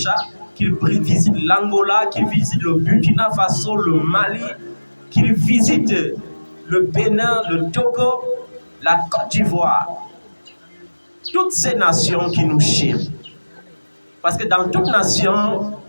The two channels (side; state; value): both; inverted; correlation -1.00